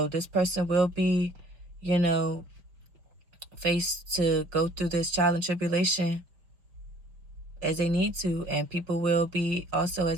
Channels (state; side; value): late; left; 5.4 ms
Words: this person will be, you know, faced to go through this trial and tribulation as they need to, and people will be also